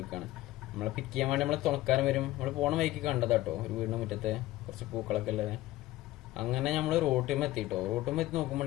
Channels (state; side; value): quieter; right; 16.6 dB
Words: നമ്മളെ പിക്ക് ചെയ്യാൻ വേണ്ടി നമ്മളെ തുണക്കാരൻ വരും. നമ്മൾ പോണ വഴിക്ക് കണ്ടതാട്ടോ, ഒരു വീടിന്റെ മുറ്റത്ത് കുറച്ച് പൂക്കളൊക്കെ ഉള്ളത്. അങ്ങനെ നമ്മള് റോട്ടുമ്മ എത്തിട്ടോ. റോട്ടുമ്മ എത്തി നോക്കുമ്പോൾ